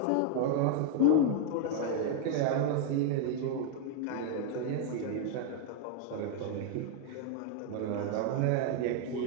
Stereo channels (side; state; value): both; different; correlation 0.00